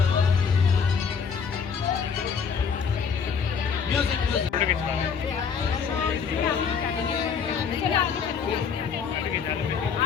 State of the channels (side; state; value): right; quieter; 6.3 dB